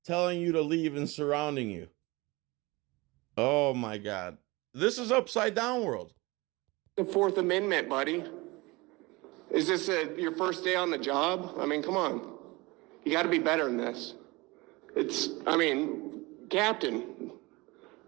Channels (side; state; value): left; quieter; 23.4 dB